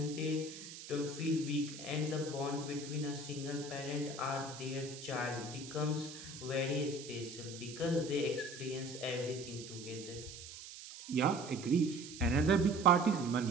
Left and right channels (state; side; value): noise; right; hiss, 13 dB below the sound